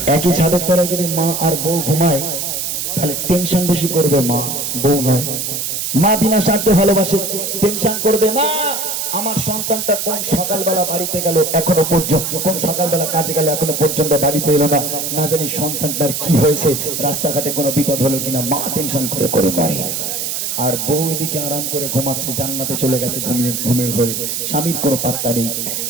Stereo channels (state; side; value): noise; right; hiss, 2 dB below the sound